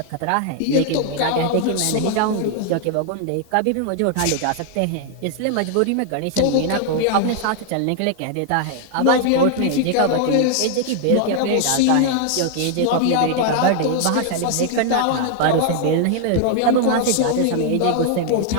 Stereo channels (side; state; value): both; different; correlation 0.00